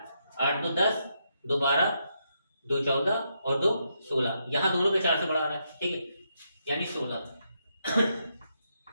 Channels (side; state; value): both; inverted; correlation -0.80